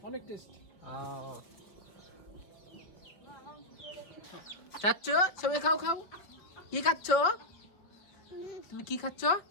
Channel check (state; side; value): late; right; 5.2 ms